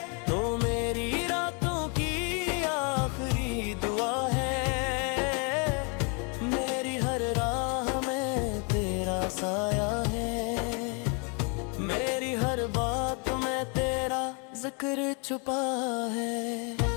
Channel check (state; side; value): quieter; right; 35.5 dB